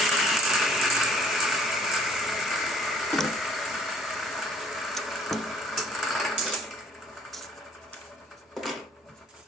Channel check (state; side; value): normal; both; correlation 0.59